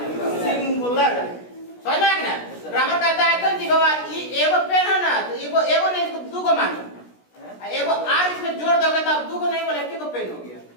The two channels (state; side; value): late; right; 16 ms